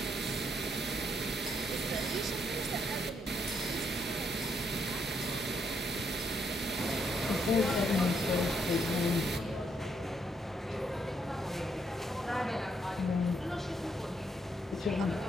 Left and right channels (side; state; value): both; normal; correlation 0.75